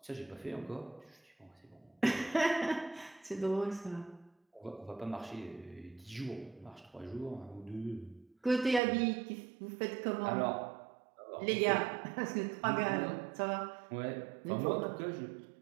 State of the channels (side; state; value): left; drops out; at 8.8 s